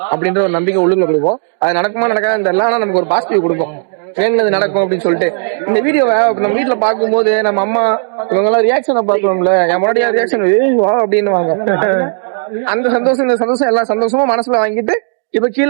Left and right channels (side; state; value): left; silent; digital silence